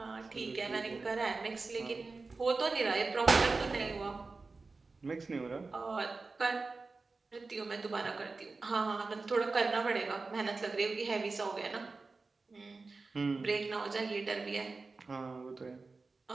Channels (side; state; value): left; quieter; 3.9 dB